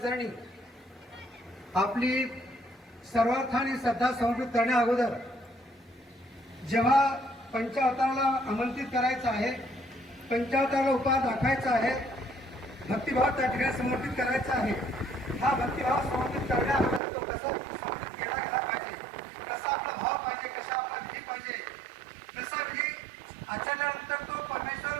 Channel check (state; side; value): drops out; left; at 17.0 s